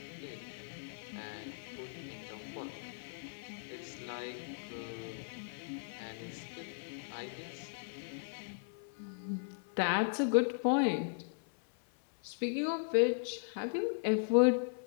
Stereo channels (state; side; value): silent; right; 53 dB below the other